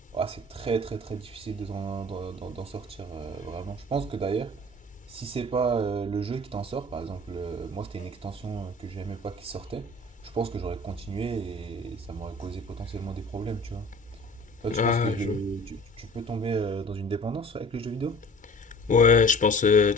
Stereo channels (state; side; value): normal; both; correlation 0.45